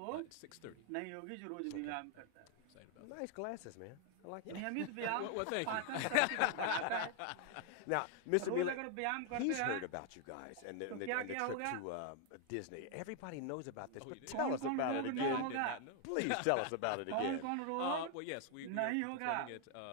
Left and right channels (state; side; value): different; both; correlation 0.00